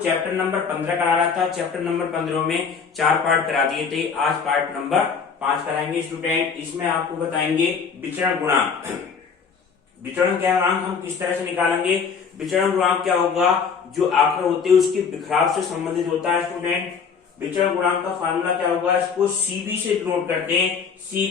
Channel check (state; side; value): quieter; right; 5.9 dB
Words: नंबर 15 करा रहा था। चैप्टर नंबर 15 में 4 पार्ट करा दिए थे। आज पार्ट नंबर 5 कराएंगे स्टूडेंट। इसमें आपको बताएंगे विचरण गुणांक। विचरण गुणांक हम किस तरह से निकालेंगे। विचरण गुणांक क्या होगा, जो आंकड़े होते हैं उसके बिखराव से संबंधित होता है स्टूडेंट। विचरण गुणांक का फार्मूला क्या होगा, इसको सीबी से डिनोट करते हैं।